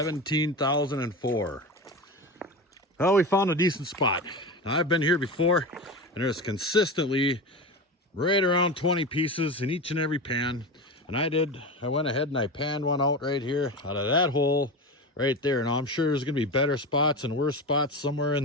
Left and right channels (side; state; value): both; normal; correlation 0.24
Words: Well, we found a decent spot. Now, I've been here before, and there's consistently right around 20 pieces in each and every pan. And I went ahead and I panned one out right here out of that hole right there. Now I'm sure there's gonna be better spots and worse spots somewhere